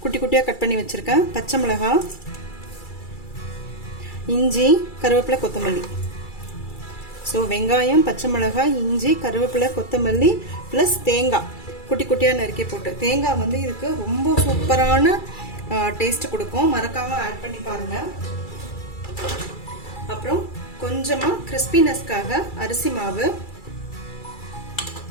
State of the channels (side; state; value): right; late; 2.3 ms